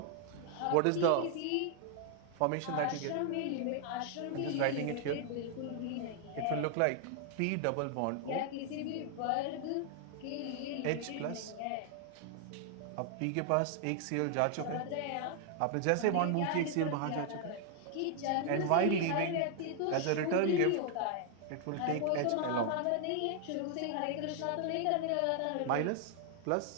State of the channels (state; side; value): different; both; correlation 0.00